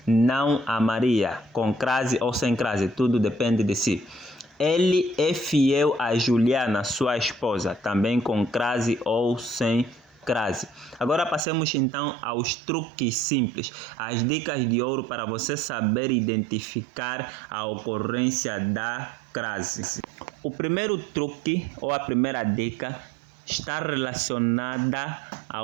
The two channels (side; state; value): left; drops out; at 11.5 s